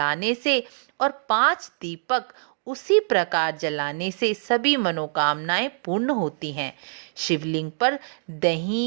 से और 5 दीपक उसी प्रकार जलाने से सभी मनोकामनाएं पूर्ण होती हैं। शिवलिंग पर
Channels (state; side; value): silent; left; digital silence